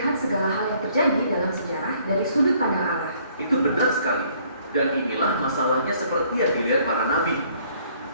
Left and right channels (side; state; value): both; inverted; correlation -0.62